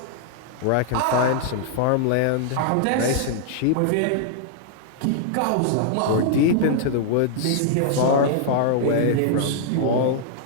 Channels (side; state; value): both; different; correlation -0.01